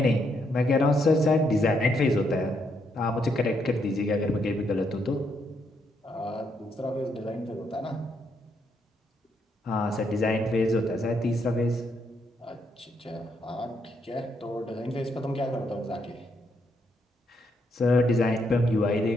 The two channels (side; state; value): both; normal; correlation 0.76